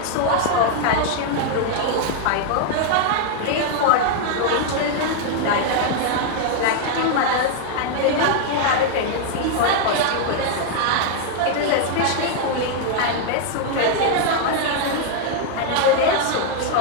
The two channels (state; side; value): different; both; correlation 0.00